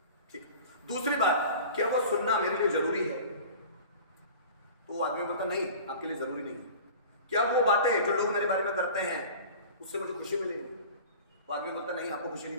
ठीक। दूसरी बात, क्या वो सुनना मेरे लिए जरूरी है, तो वो आदमी बोलता नहीं आपके लिए जरूरी नहीं है। क्या वो बातें जो लोग मेरे बारे में करते हैं उससे मुझे खुशी मिलेगी, वो आदमी बोलता नहीं आपको खुशी नहीं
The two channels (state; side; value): inverted; both; correlation -0.40